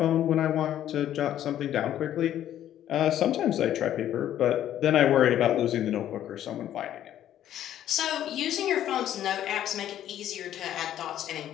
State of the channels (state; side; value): quieter; right; 11.5 dB